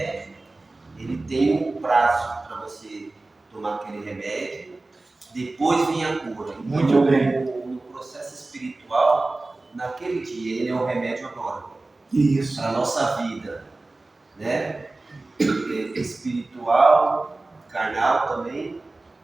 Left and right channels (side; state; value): left; quieter; 3.1 dB